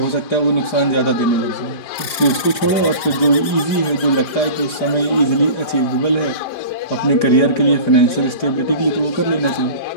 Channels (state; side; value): late; right; 5.0 ms